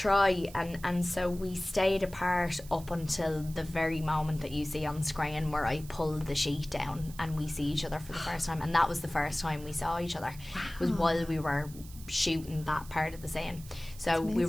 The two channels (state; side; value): noise; right; hiss, 19 dB below the sound